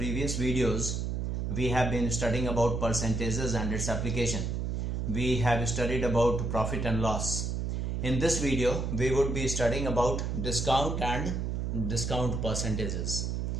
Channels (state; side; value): noise; right; hum, 1 dB below the sound